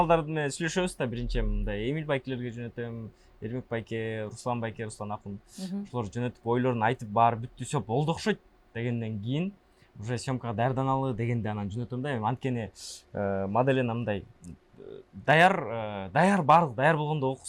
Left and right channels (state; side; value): identical; both; correlation 1.00